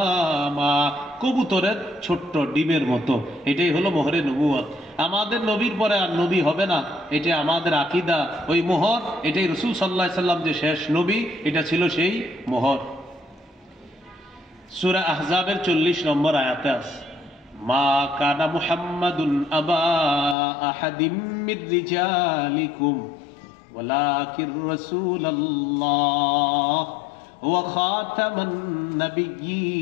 কবুতরের ছোট্ট ডিমের মতো, এটাই হলো মোহরে নবুয়ত। আমাদের নবীর পরে আর নবী হবে না, এটা আমাদের আকীদা। ওই মোহর, এটাই রাসূল সাল্লাল্লাহু আলাইহি সাল্লাম যে শেষ নবী, এটা ছিল সেই মোহর। সূরা আহজাবের 40 নম্বর আয়াতে আছে, মা কানা মুহাম্মাদুন আবা আহাদিম মির রিজালিকুম ওয়ালাকির রাসূলুল্লাহ ওয়া খাতামান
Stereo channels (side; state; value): right; drops out; at 20.4 s